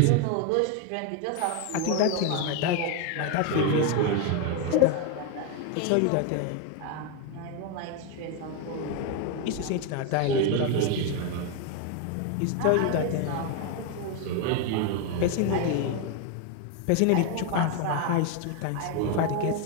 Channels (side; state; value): both; different; correlation 0.02